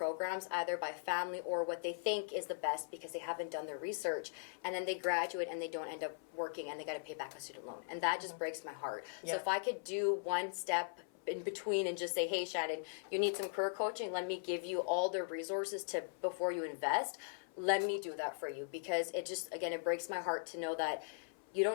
either by family or what they think is the best because they haven't done their research, and then they graduate and they don't end up working and they got to pay back a student loan, and that just breaks my heart. So if I could do one step in between and just say, hey Shannon, you need some career coaching, let me give you all the resources to before you invest, let me do that for you, because it just, again, it breaks my heart to know that you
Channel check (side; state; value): right; silent; 51 dB below the other